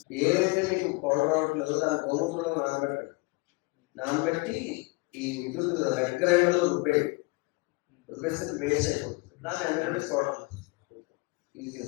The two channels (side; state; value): right; quieter; 26.2 dB